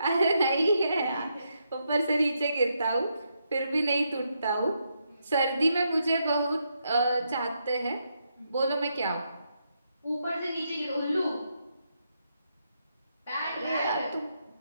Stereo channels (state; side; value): inverted; both; correlation -0.80